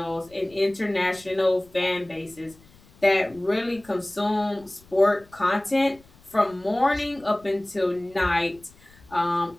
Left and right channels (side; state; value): left; noise; rumble, 27 dB below the sound